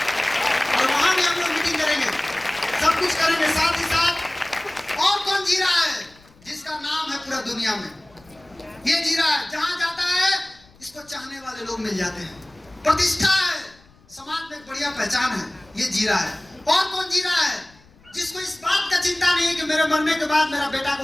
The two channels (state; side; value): noise; left; rumble, 28 dB below the sound